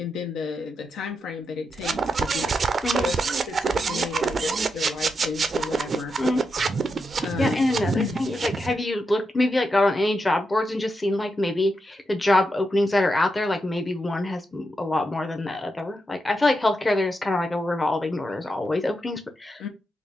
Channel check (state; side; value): normal; both; correlation 0.85